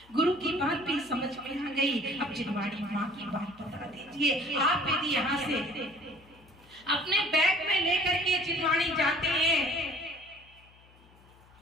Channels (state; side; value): noise; left; hum, 27 dB below the sound